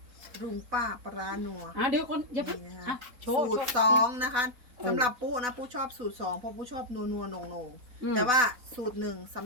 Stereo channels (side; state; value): left; late; 4.1 ms